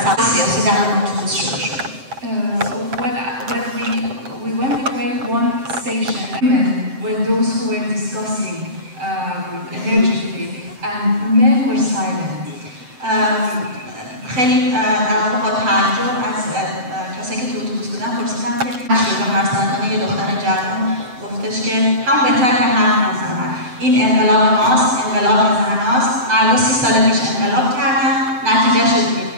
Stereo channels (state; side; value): late; left; 7.9 ms